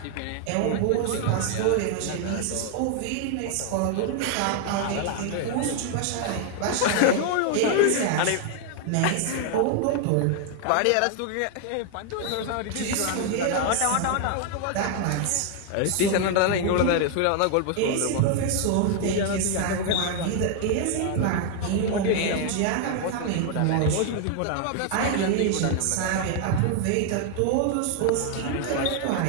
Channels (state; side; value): different; both; correlation 0.00